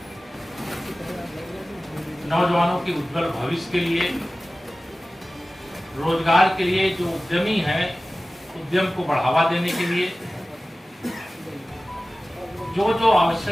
नौजवानों के उज्जवल भविष्य के लिए, रोजगार के लिए, जो उद्यमी हैं उद्यम को बढ़ावा देने के लिए जो जो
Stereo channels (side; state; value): both; normal; correlation 0.97